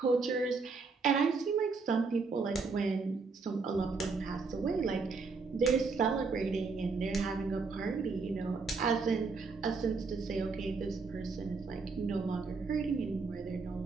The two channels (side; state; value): left; quieter; 4.5 dB